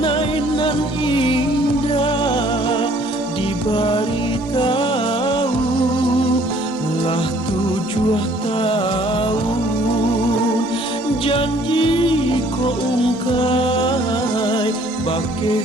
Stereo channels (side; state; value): both; normal; correlation 0.59